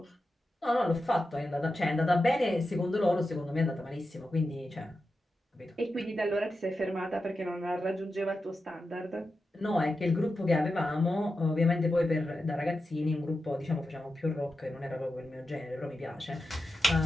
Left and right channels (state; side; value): normal; both; correlation 0.90